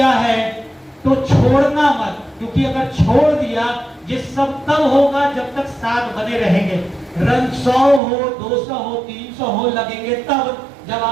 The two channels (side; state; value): left; drops out; at 8.0 s